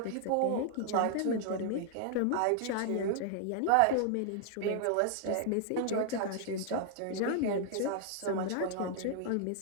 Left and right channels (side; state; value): both; different; correlation 0.00